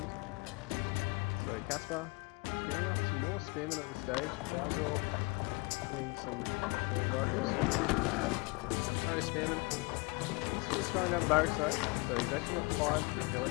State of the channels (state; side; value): quieter; right; 27.2 dB